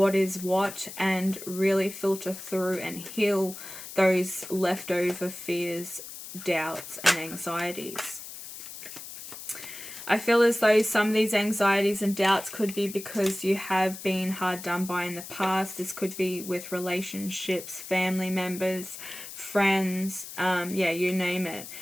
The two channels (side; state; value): left; noise; hiss, 12 dB below the sound